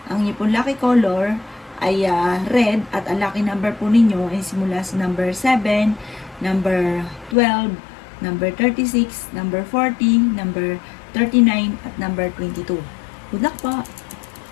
Ang inyong pong lucky color ay red at ang lucky number po ninyo ay simula sa number 7, number 12, number 36, number 40, number 39, at number 22. Good luck po!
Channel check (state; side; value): drops out; right; at 7.4 s